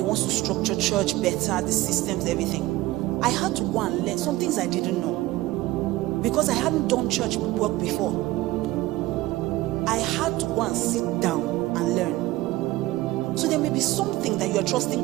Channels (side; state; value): left; quieter; 17.9 dB